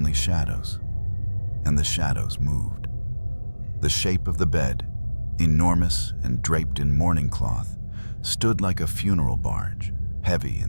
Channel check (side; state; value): both; inverted; correlation -1.00